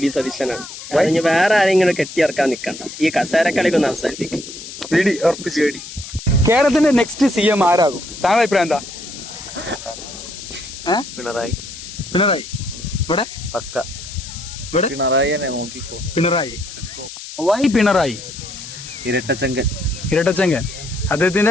സതീശനാണ്. അതിന് വേറെ ആരെങ്കിലും കെട്ടിയിറക്കാൻ നിൽക്കണ്ട. ഈ കസേരക്കളിക്കൊന്ന് അവസാനിപ്പിക്കും. കേരളത്തിന്റെ നെക്സ്റ്റ് CM ആരാകും? താങ്കളുടെ അഭിപ്രായം എന്താ? പിണറായി. പിണറായി. ഇവിടെ പക്ക ഇവിടെ പിണറായി തന്നെ നോക്കിക്കോ. പിണറായി. വൈ പിണറായി? ഇരട്ടച്ചങ്കൻ. ഇരട്ടച്ചങ്കൻ.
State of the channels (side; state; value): left; noise; hiss, 12 dB below the sound